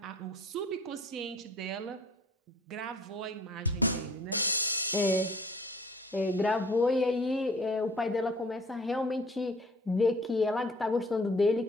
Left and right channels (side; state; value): both; normal; correlation 0.52